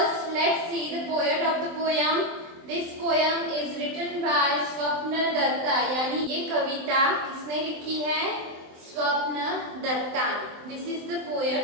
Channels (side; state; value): left; late; 24 ms